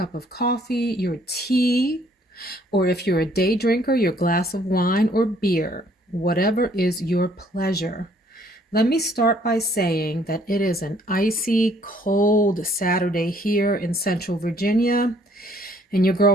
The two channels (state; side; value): normal; both; correlation 0.63